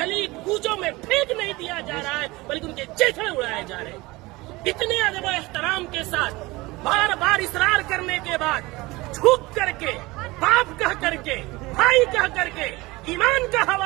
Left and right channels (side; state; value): left; quieter; 21.7 dB